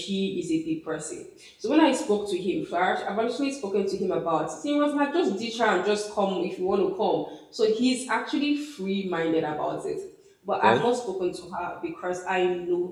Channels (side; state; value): both; identical; correlation 1.00